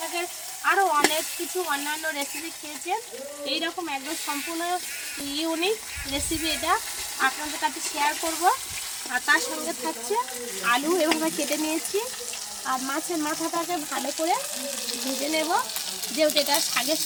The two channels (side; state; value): both; identical; correlation 1.00